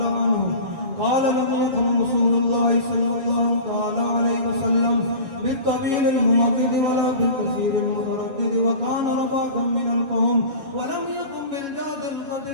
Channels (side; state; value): left; late; 7.3 ms